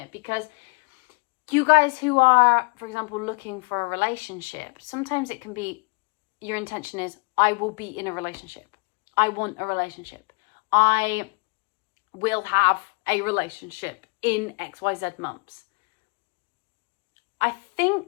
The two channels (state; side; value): quieter; right; 32.5 dB